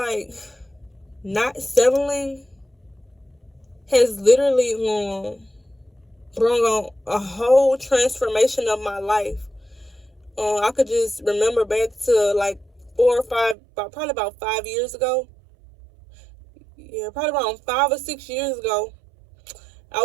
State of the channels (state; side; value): drops out; left; at 13.6 s